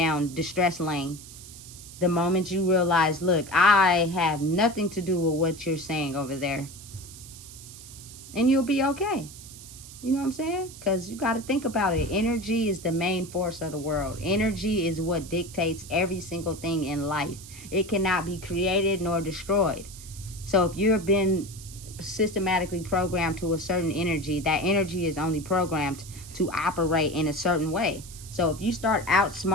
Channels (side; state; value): right; noise; hiss, 16 dB below the sound